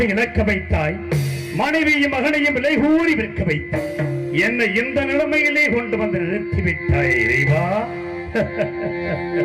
இழக்க வைத்தாய், மனைவியும் மகனையும் விலை கூறி விற்க வைத்தாய், என்னை இந்த நிலைமையிலே கொண்டு வந்து நிறுத்திவிட்டாய் இறைவா.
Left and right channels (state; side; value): identical; both; correlation 1.00